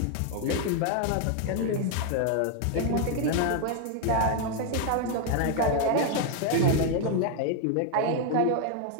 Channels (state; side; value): different; both; correlation 0.00